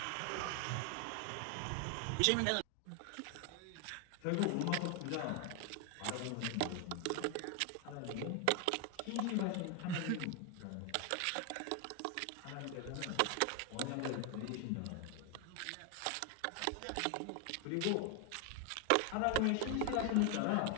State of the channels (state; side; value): different; both; correlation 0.00